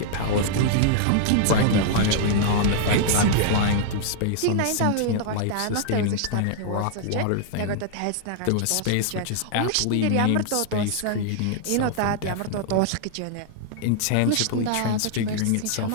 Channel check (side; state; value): both; different; correlation -0.01